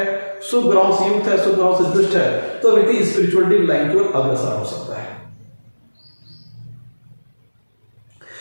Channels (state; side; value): inverted; both; correlation -1.00